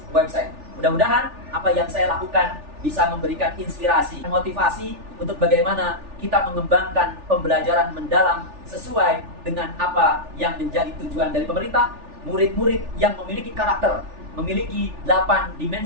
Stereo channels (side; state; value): left; late; 3.4 ms